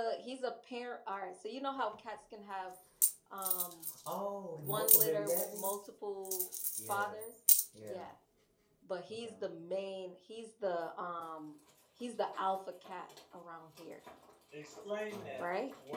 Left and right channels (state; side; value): identical; both; correlation 1.00